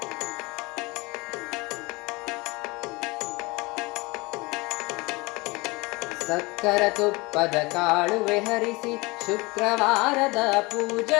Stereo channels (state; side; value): quieter; right; 24.5 dB